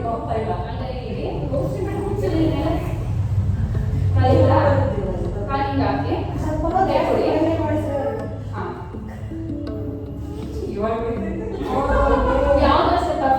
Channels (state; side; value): identical; both; correlation 1.00